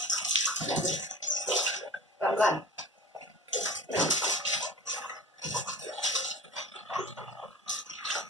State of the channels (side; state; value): both; normal; correlation 0.39